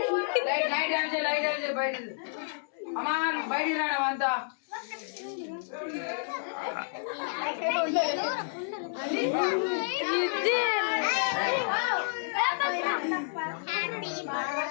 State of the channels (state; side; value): silent; right; 58 dB below the other